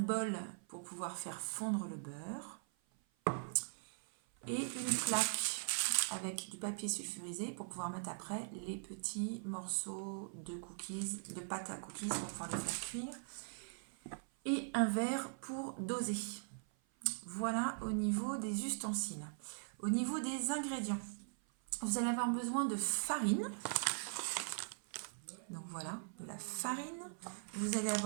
pour pouvoir faire fondre le beurre et une plaque avec du papier sulfurisé pour pouvoir mettre après les petits morceaux de cookies, de pâte à cookies pour pouvoir les faire cuire, et un verre pour doser. Voilà au niveau des ustensiles. Au niveau des ingrédients, vous allez avoir besoin de farine. Donc voilà, de la farine. Vous allez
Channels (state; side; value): silent; left; 50 dB below the other